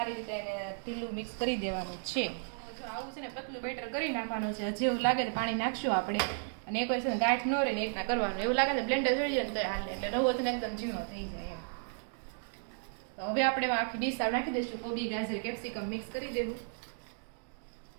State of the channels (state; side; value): silent; left; digital silence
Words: રીતે એને ઢીલું મિક્સ કરી દેવાનું છે. જો આવું છે ને પતલું બેટર કરી નાખવાનું છે. જેવું લાગે તો પાણી નાખશું આપણે અને એક વસ્તુ ગાંઠ ન રહે ને એક ના કરવાનું. એવું લાગે ને બ્લેન્ડર થઈ જાય ને તો હાલે એટલે રવો છે ને એકદમ ઝીણો થઈ જાય એમ. તો હવે આપણે આખી ડીશ નાખી દઈશું. કોબી ગાજર કેપ્સિકમ મિક્સ કરી દેવું